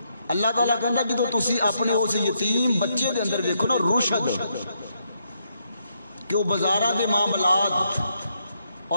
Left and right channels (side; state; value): both; inverted; correlation -0.77